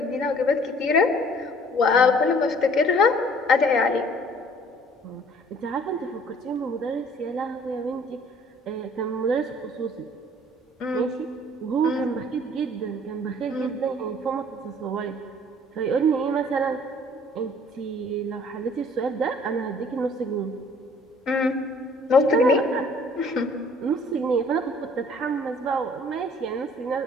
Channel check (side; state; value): both; normal; correlation 0.55